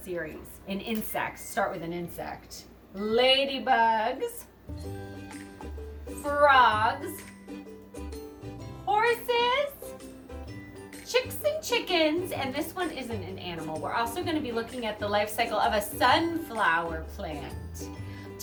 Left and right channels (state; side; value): identical; both; correlation 1.00